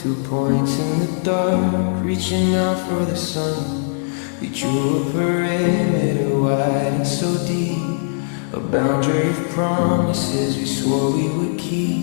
points in the dark, reaching out for the sun. We drew a perimeter wide and so deep, a boundary of promises we swore we would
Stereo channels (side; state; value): right; silent; digital silence